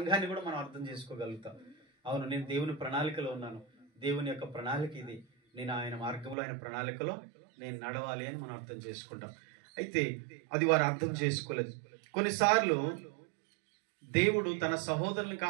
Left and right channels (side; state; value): left; drops out; at 6.4 s